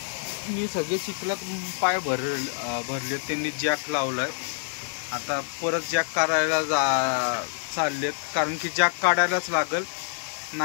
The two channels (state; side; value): silent; right; digital silence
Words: मी सगळे चिखलात पाय भरले, त्यांनी जॅक लावलाय। आता परत जॅक काढायला चाललेत, कारण की जॅक काढायलाच लागल।